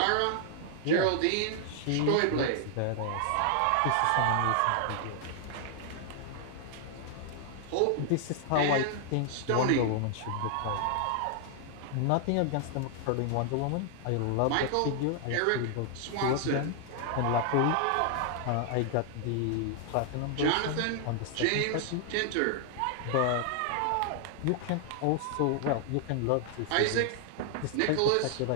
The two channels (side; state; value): both; different; correlation 0.00